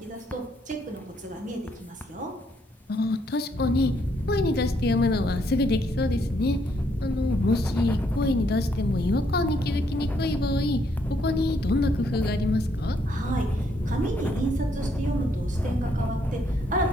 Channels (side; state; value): both; normal; correlation 0.72